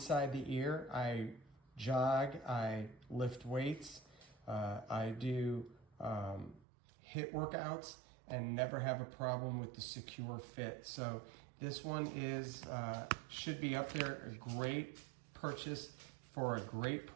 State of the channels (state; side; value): drops out; left; at 6.7 s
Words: the ear. I jog, I lift weights, I do HIIT workouts and never have a problem with the secure fit. So this one is should be up there. A great purchase for a great